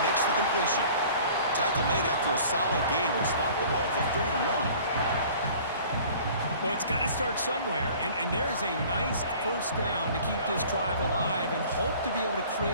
makes the completion. Tackle made after a solid gain. Will spot the ball for 31. Well, it's got to start somewhere, and there's a nice first down to keep this drive alive and hope to be able to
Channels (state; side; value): inverted; both; correlation -0.48